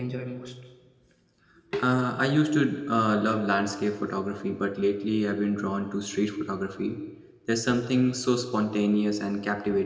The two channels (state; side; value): identical; both; correlation 1.00